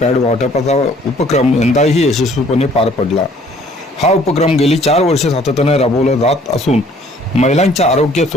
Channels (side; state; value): both; normal; correlation 0.58